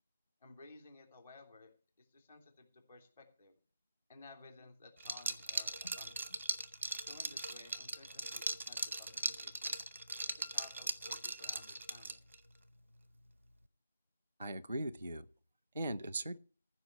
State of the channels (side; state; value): both; inverted; correlation -0.86